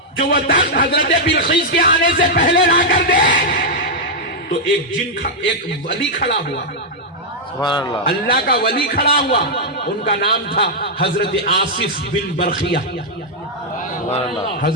جو وہ تخت حضرت بلقیس کے آنے سے پہلے لا کر دے؟ تو ایک ولی کھڑا ہوا، سبحان اللہ، اللہ کا ولی کھڑا ہوا، ان کا نام تھا حضرت آصف بن برخیہ۔ سبحان اللہ،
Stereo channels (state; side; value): normal; both; correlation -0.04